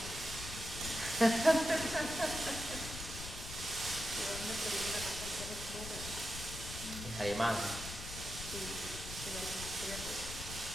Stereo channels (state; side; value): noise; left; rumble, 9 dB below the sound